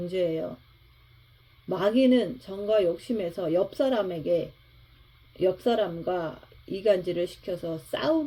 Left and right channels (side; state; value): both; identical; correlation 1.00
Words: 마귀는 정과 욕심에서 옆 사람과 이간질을 시켜서